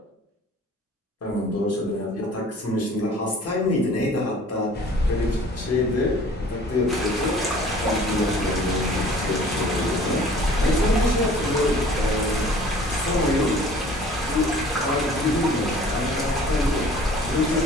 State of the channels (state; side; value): normal; both; correlation 0.50